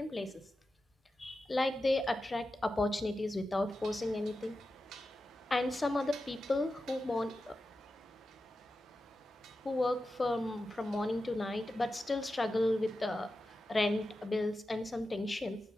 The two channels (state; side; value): normal; both; correlation 0.92